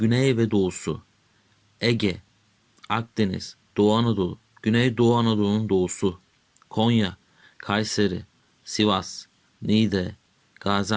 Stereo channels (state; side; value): identical; both; correlation 1.00